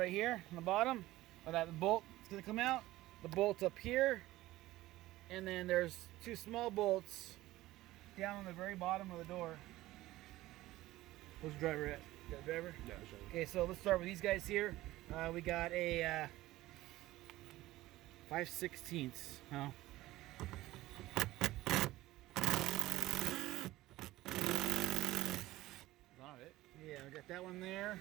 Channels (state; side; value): quieter; left; 16.9 dB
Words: here on the bottom. That bolt is gonna come out. The bolt's up here, and then there's 2 small bolts down on the very bottom of the door. Where's the driver at? You got a driver? Yeah, sure. Okay, so let's start with these guys here. We got a 5/16. Oh. Got it. Yeah, we got that one there.